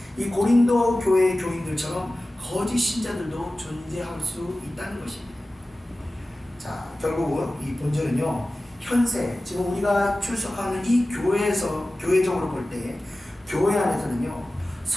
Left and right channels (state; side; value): normal; both; correlation 0.96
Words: 이 고린도 교회의 교인들처럼 거짓 신자들도 존재할 수 있다는 것입니다. 자, 결국은 이 본절은요 현세, 지금 우리가 출석하는 이 교회에서, 교회적으로 볼 때 교회 안에서는요